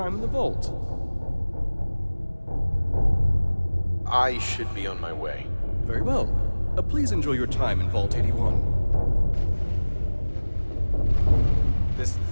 in the vault. I should be on my way. Very well. Please enjoy your time in Vault 81. This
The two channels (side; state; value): both; inverted; correlation -1.00